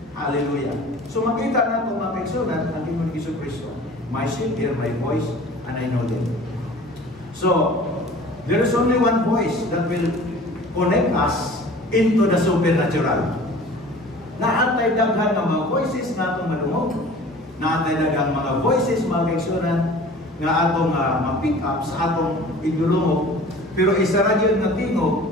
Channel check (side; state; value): both; normal; correlation 0.44